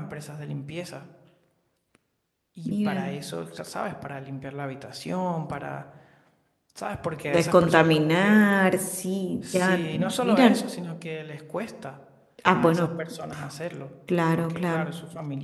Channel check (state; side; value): identical; both; correlation 1.00